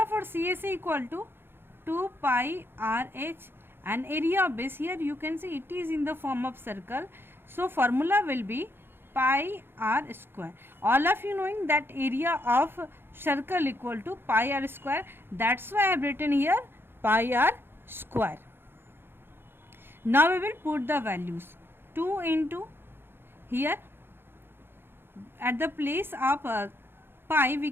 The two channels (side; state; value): left; late; 0.11 ms